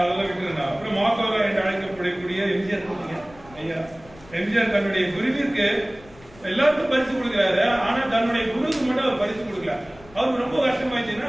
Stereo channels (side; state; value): left; noise; rumble, 23 dB below the sound